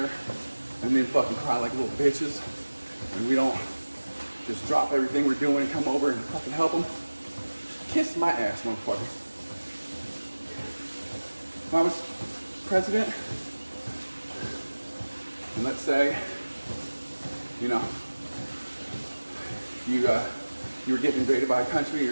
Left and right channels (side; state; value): both; inverted; correlation -1.00